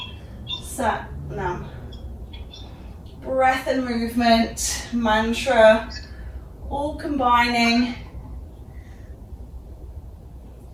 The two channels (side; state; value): both; identical; correlation 1.00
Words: Sat Nam. Breath and movement, mantra, all combining.